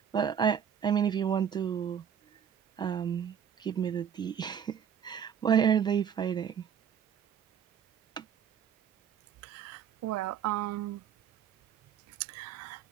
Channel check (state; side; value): quieter; left; 8.3 dB